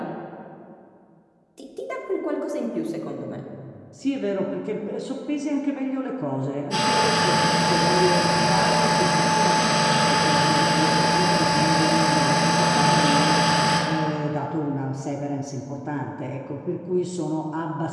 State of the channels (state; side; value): identical; both; correlation 1.00